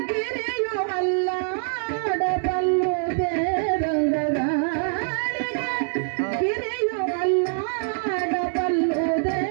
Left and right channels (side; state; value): left; silent; 62 dB below the other